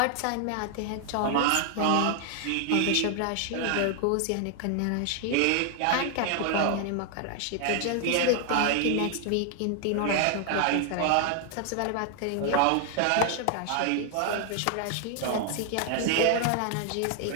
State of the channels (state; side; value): different; both; correlation 0.00